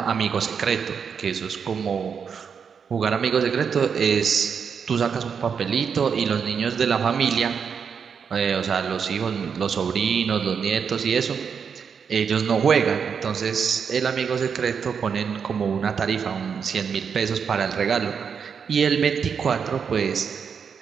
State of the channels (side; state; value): left; quieter; 6.6 dB